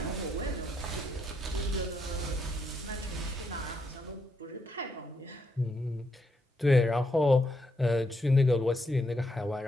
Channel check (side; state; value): both; normal; correlation 0.78